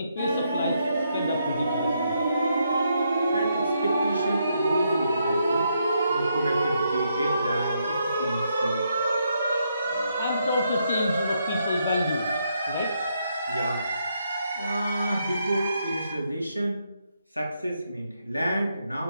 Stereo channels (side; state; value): both; inverted; correlation -0.78